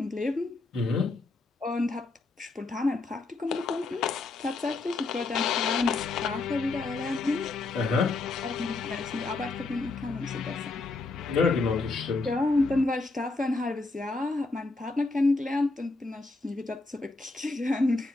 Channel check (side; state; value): right; quieter; 3.5 dB